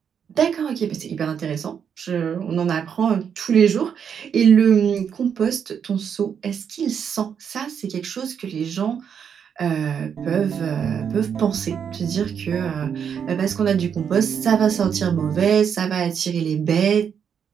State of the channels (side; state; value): left; quieter; 7.6 dB